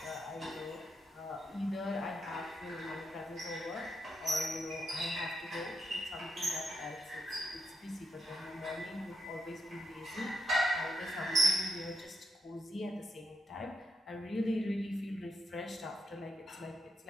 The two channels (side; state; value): both; normal; correlation 0.82